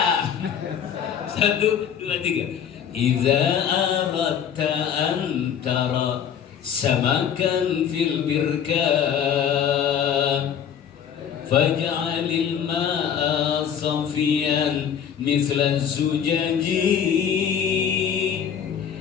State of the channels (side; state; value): right; quieter; 8.3 dB